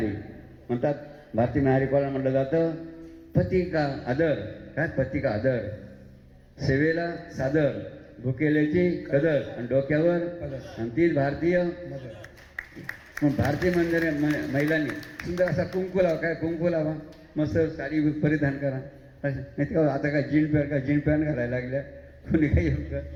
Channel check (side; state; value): both; identical; correlation 1.00